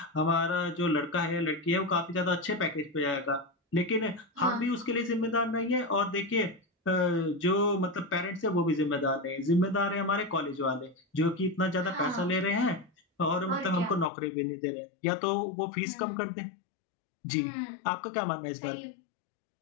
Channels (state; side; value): drops out; right; at 14.1 s